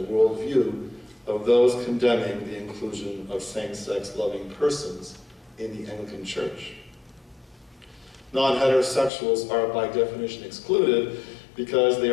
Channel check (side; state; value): right; drops out; at 9.1 s